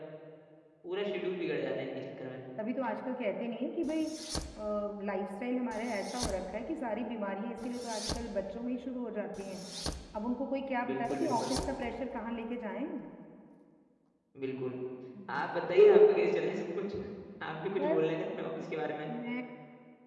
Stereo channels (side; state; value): both; identical; correlation 1.00